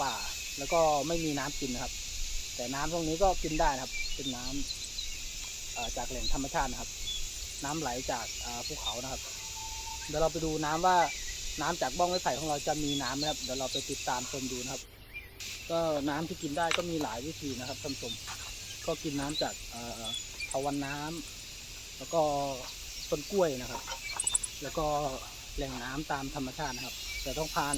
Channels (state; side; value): identical; both; correlation 1.00